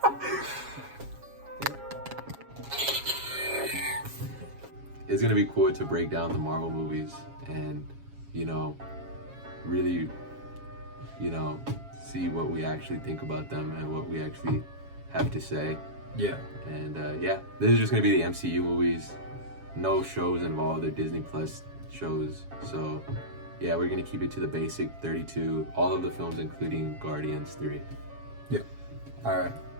It's going to be cool to break down the Marvel movies and, really, see what we actually think about them and what we actually have to say. Yeah. And this is just going to be the MCU movies. No shows involved. They're Disney Plus shows. So, yeah, we're going to keep it to the basic 32. All of the films, including Guardians 3. Yeah. All right.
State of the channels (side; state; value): left; late; 7.3 ms